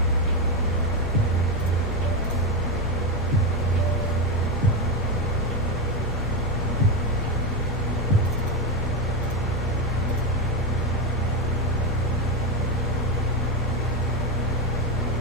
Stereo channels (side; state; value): left; noise; hum, 20 dB below the sound